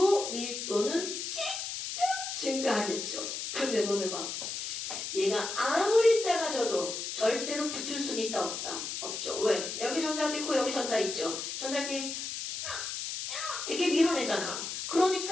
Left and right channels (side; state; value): left; noise; hiss, 5 dB below the sound